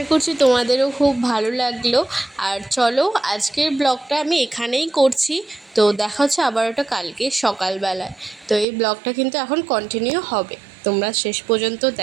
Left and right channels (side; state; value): left; drops out; at 8.7 s